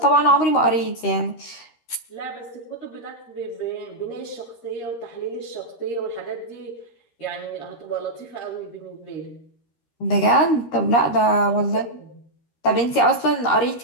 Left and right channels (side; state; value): right; late; 13 ms